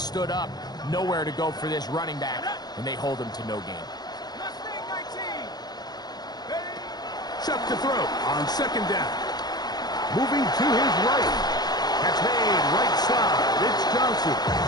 up. Nowhere to go for this running back, and they hold him to no gain. Mustang 19. Chuck to throw on 2nd down. Moving to his right. Catch made right side. It's Johnson.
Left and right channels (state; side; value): late; right; 0.19 ms